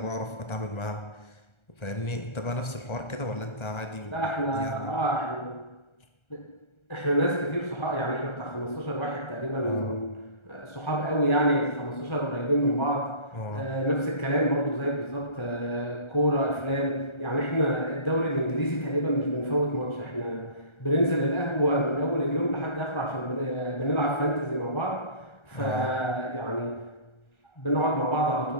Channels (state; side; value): late; right; 1.3 ms